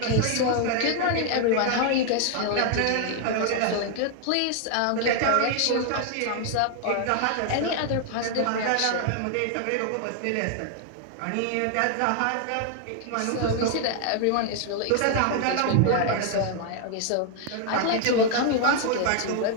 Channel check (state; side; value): different; both; correlation 0.00